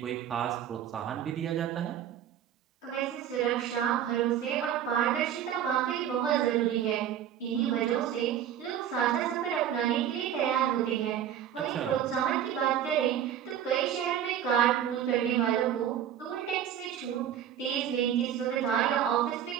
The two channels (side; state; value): left; quieter; 10.0 dB